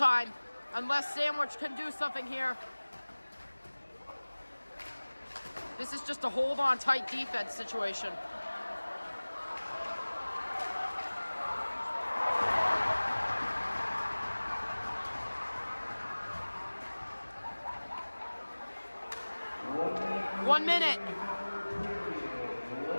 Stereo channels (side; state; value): both; inverted; correlation -1.00